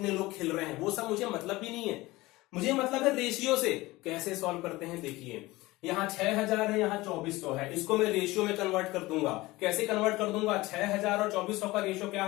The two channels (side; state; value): right; quieter; 19.9 dB